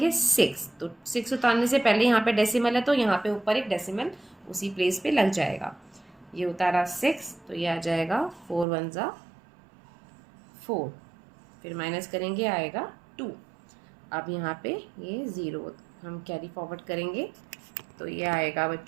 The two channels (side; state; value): left; drops out; at 8.7 s